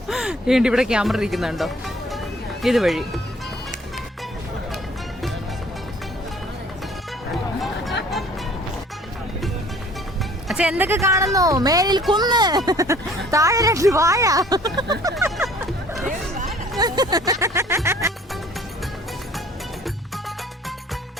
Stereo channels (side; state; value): both; normal; correlation 0.54